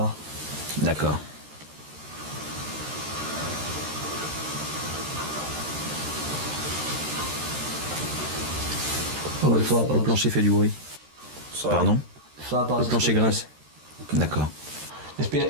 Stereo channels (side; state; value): left; late; 13 ms